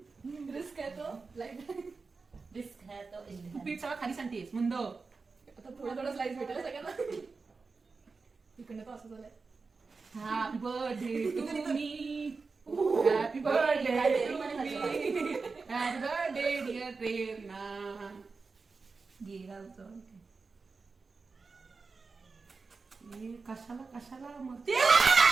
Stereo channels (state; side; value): quieter; left; 4.4 dB